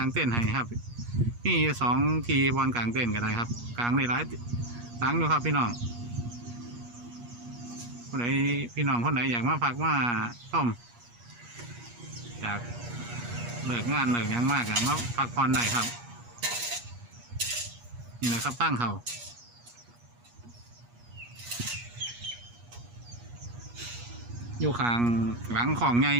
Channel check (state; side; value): late; left; 8.4 ms